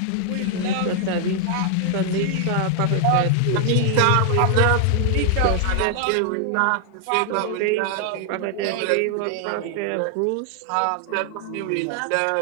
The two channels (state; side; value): different; both; correlation 0.00